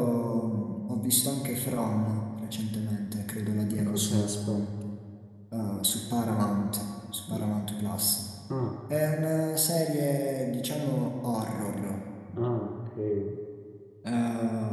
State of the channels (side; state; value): both; identical; correlation 1.00